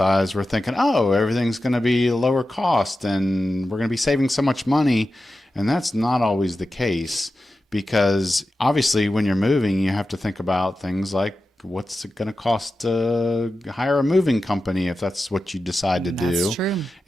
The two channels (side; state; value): both; normal; correlation 0.92